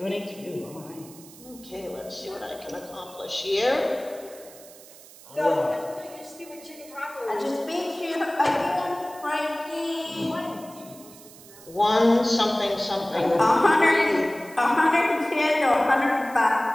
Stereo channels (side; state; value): right; noise; hiss, 20 dB below the sound